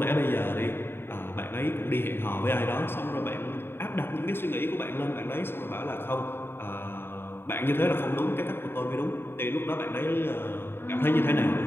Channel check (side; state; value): right; late; 0.11 ms